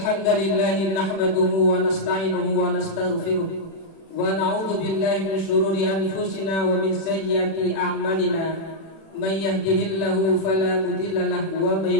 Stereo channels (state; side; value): late; right; 36 ms